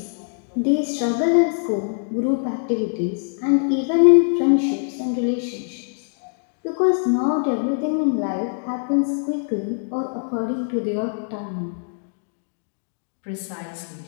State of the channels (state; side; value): silent; right; digital silence